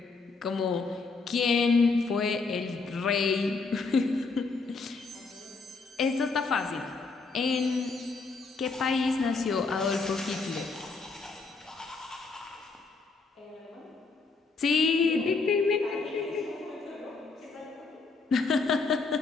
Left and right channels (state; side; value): quieter; right; 4.2 dB